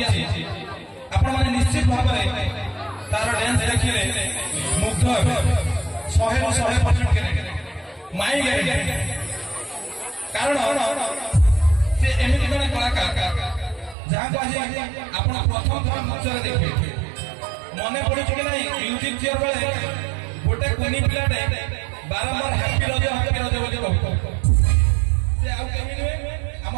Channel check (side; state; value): left; drops out; at 14.0 s